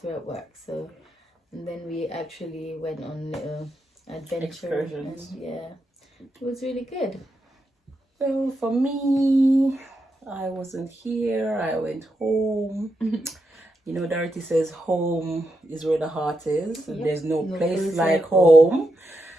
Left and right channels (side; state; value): both; normal; correlation 0.85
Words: at work. So, and then we actually went on little adventure. Excursions. And, yeah, it was really good. So for me, I wasn't here. I went home. You know, Dorothy says home is where the heart is. Yep. There's no No place place like like home.